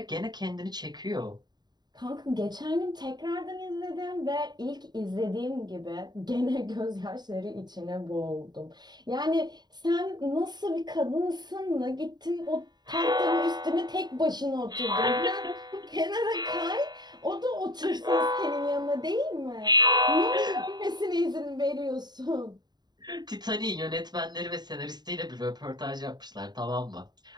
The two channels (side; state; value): left; late; 0.20 ms